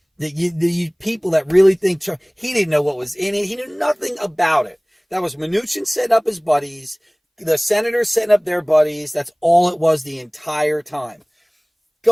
The people that really think Trump, he didn't know what was in it. He knew nothing about it. That was Mnuchin setting up his buddies, the senators setting up their buddies. That's all it was the entire time.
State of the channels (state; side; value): identical; both; correlation 1.00